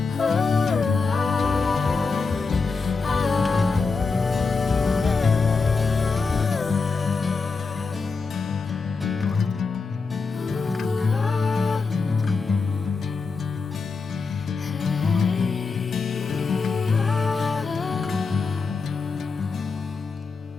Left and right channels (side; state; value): right; quieter; 4.5 dB